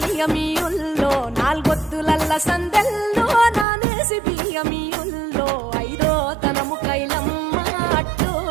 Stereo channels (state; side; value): drops out; left; at 3.7 s